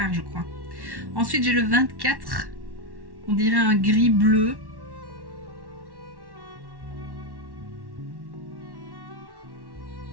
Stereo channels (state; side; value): late; left; 1.1 ms